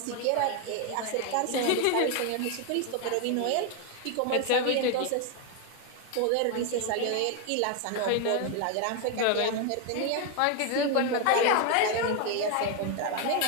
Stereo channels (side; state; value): both; different; correlation 0.01